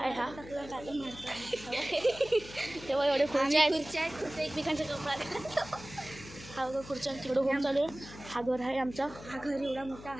हा. तेव्हा एवढे खुर्च्या आहेत. खुर्च्या आहेत, खुर्च्या एकमेकांच्या कपडा. हा बघा खुर्च्या तिकडं होम चालू आहे. हा घर आहे आमचा. हा घर एवढा मोठा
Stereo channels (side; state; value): left; noise; hum, 16 dB below the sound